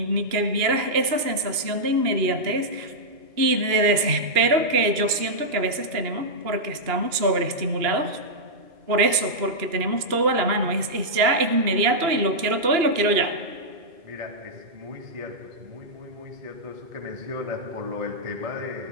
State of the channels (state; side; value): late; left; 2.8 ms